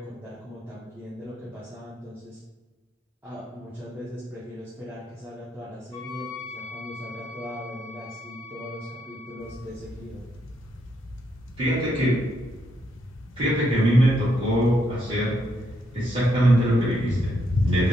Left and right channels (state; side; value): normal; both; correlation 0.77